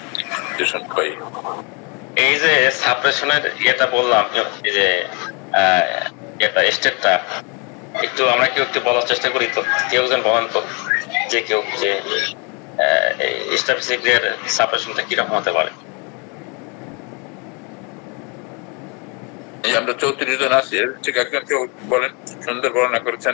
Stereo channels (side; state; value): right; quieter; 32.9 dB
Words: এই যে সাপ্রেশনের ইয়েটা বললাম, এই যে এটা স্টেটটা একটু আমরা কেউ একটু বলার চেষ্টা করি, তো কেউ যেন বলেন তো, যে কেউ যে স্ট্যাটিস্টিকের সাপ্রেশনটা কিরকম হতে পারে। আমরা 34 জন আছি, ঠিক একজন কেউ বলেন, সুন্দর বর্ণনা